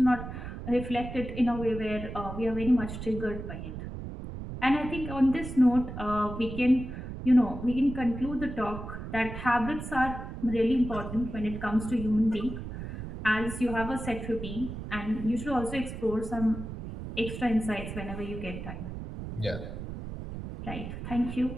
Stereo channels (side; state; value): right; noise; rumble, 8 dB below the sound